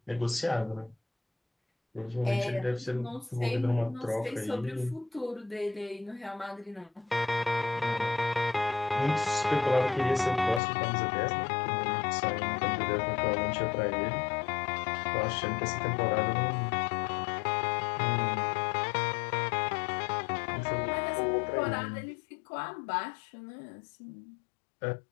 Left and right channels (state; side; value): drops out; right; at 10.6 s